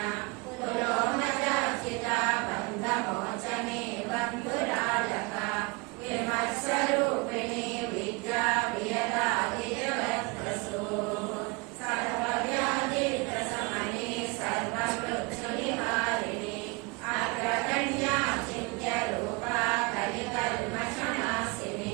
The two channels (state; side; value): quieter; left; 27.8 dB